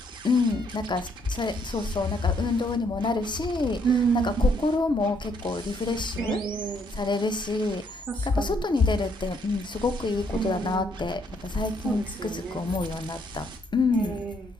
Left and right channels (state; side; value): normal; both; correlation 0.70